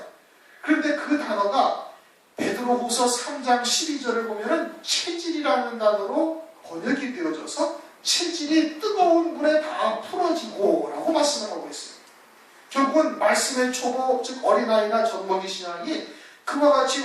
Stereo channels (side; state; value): both; identical; correlation 1.00